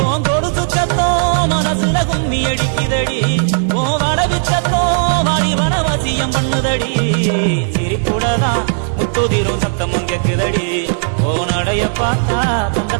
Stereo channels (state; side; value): silent; left; digital silence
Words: கொலுசு சத்தம் மனசுல கும்மி அடிக்குதடி ஓ வடவிச்சத்தம் வாடி வனவசியம் பண்ணுதடி சிரிப்புடதான் முத்துதிரும் சத்தம் கேக்குதடி ஓ நடைய பார்த்தா தங்க